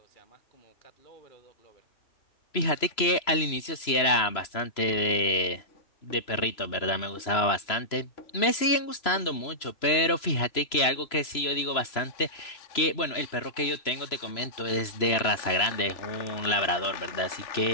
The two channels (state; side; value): late; right; 3.0 ms